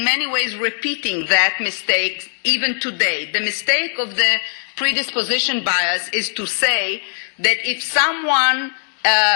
many ways repeating that mistake even today. The mistake of the predisposition bias is to say that if someone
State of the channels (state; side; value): silent; right; 66 dB below the other